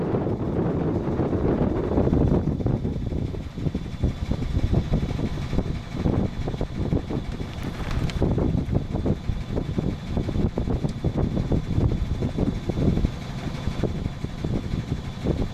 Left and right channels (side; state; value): both; identical; correlation 1.00